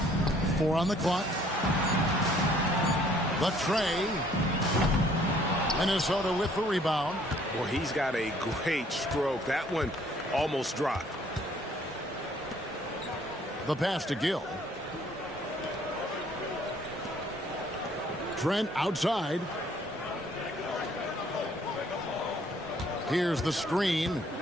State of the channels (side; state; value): both; normal; correlation 0.61